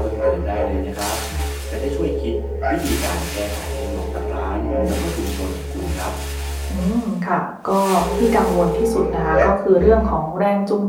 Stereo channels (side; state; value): both; identical; correlation 1.00